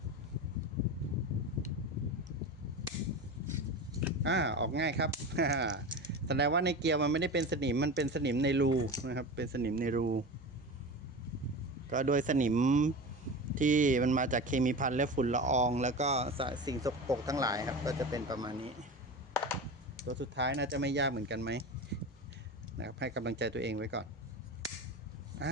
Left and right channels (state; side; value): normal; both; correlation 0.28